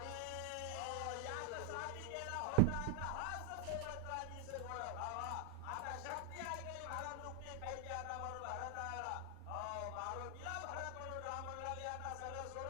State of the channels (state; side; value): different; both; correlation 0.00